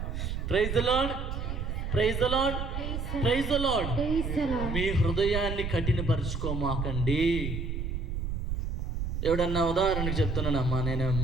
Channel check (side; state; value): right; noise; rumble, 3 dB below the sound